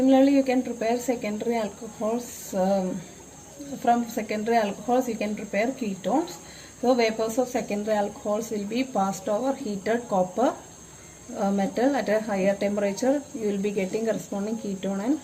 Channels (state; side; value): identical; both; correlation 1.00